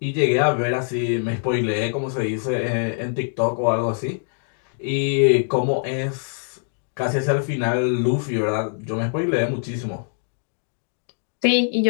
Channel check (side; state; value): right; silent; digital silence